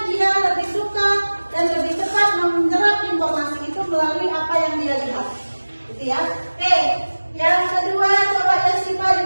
dia lebih suka dan lebih cepat menyerap informasi itu melalui apa yang dia lihat. Gitu ya. Oke, yang kedua coba Yasifa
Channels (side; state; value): both; inverted; correlation -1.00